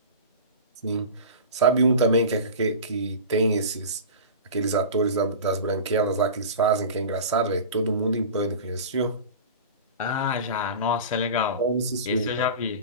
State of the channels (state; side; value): inverted; both; correlation -0.33